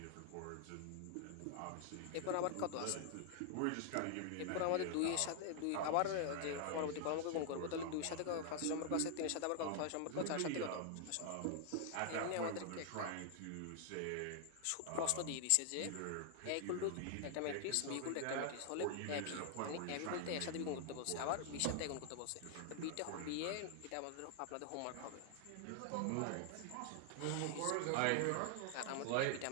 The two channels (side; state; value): both; different; correlation 0.00